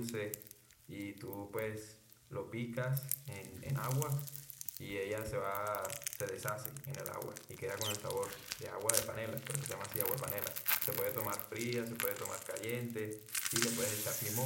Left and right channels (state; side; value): identical; both; correlation 1.00